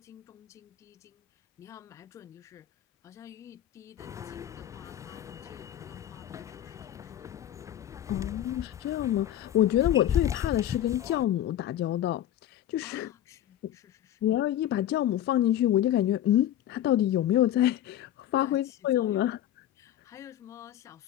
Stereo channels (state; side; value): quieter; right; 12.0 dB